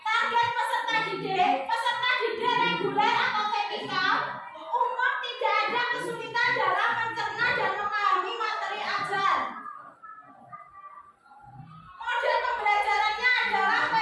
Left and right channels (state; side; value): identical; both; correlation 1.00